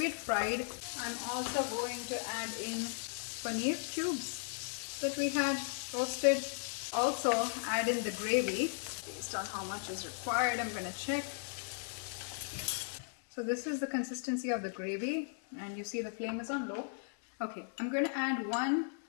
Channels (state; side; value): silent; right; digital silence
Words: had fried. I'm also going to add in paneer cubes that we had roasted. Also add in the gravy based on how much is required. I'm going to check. So this is the consistency of the gravy, and you see the flame is on low. Okay, I'm going to add 1